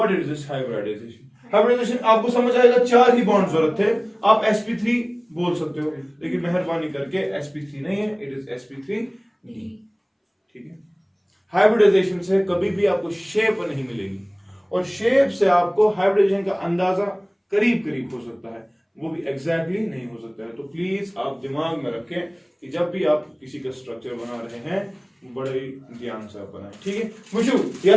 is this hybridization? Hybridization आपको समझ आएगा 4 ही बॉन्ड जरूरत थे, आप sp3 बोल सकते हो, लेकिन मेहरबानी करके sp3 नहीं है, इट इज sp3d ठीक है। हाइब्रिडाइजेशन से कभी भी आपको शेप नहीं मिलेगी, और शेप से आपको हाइब्रिडाइजेशन का अंदाजा करीब करीब हो सकता है, वो भी एग्जैक्टली नहीं हो सकता है। तो प्लीज आप दिमाग में रखें कि जब भी आप किसी का स्ट्रक्चर बना रहे हैं बड़े ध्यान से आप बनाएं, ठीक है। मुझे या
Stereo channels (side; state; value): both; identical; correlation 1.00